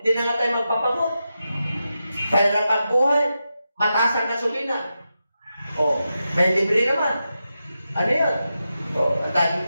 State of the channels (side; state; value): both; inverted; correlation -0.89